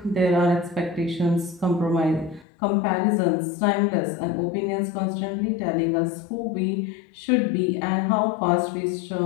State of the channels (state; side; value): drops out; right; at 2.5 s